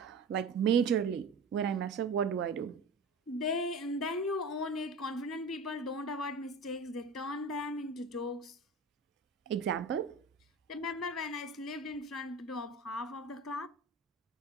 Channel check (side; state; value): left; quieter; 3.1 dB